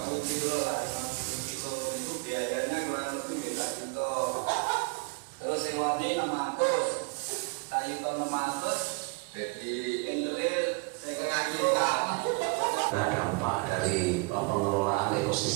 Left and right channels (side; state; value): left; quieter; 30.7 dB